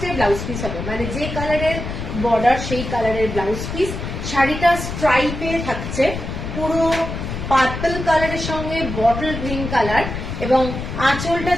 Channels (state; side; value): noise; left; rumble, 6 dB below the sound